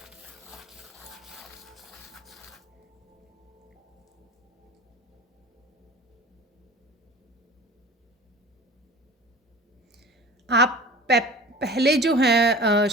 आप पहले जो हैं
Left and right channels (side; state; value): both; normal; correlation 0.40